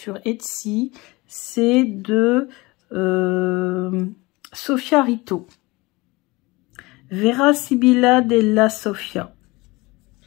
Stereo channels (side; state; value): right; quieter; 22.8 dB